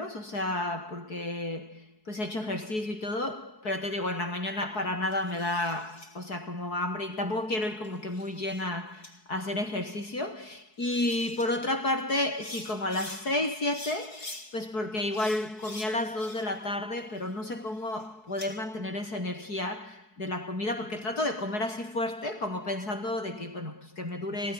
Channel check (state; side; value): late; right; 4.7 ms